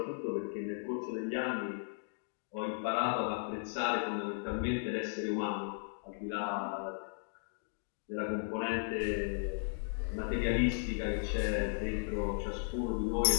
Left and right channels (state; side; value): silent; right; digital silence